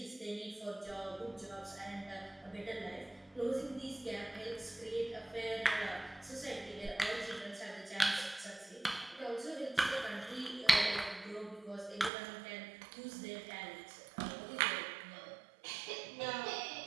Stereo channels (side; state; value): left; drops out; at 12.1 s